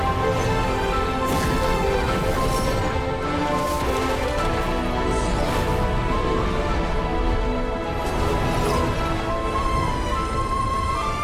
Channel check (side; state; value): both; identical; correlation 1.00